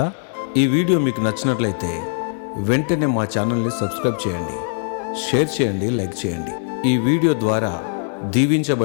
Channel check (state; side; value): silent; right; digital silence